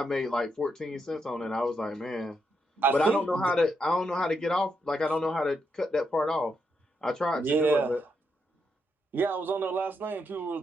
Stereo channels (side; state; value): both; normal; correlation 0.80